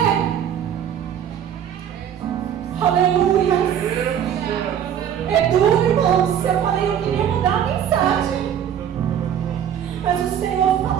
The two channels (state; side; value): quieter; left; 9.4 dB